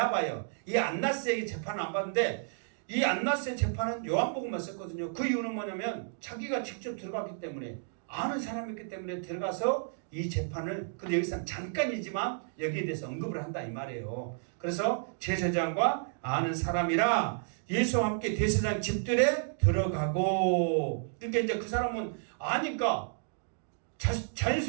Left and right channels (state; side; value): silent; left; digital silence